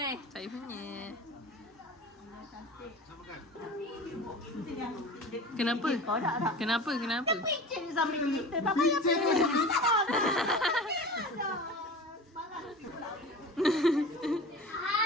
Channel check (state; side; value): normal; both; correlation 0.36